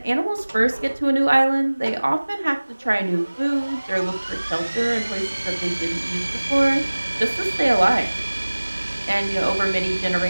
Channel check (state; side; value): inverted; both; correlation -1.00